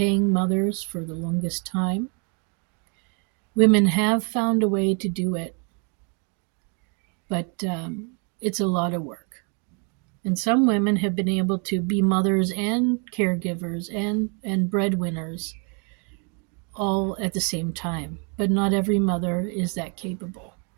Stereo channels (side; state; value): left; quieter; 35.7 dB